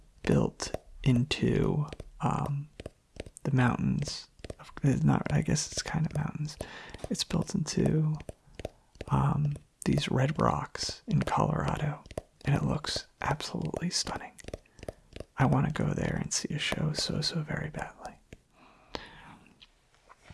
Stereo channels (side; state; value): both; identical; correlation 1.00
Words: built into the mountains. It's not, I guess it's kind of mountains. It's built into these red rocks in Colorado, and it looks absolutely stunning. I want to go there and see a show so very badly.